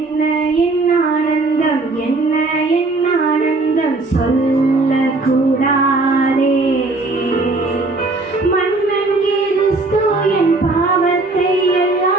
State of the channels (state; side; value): quieter; left; 3.3 dB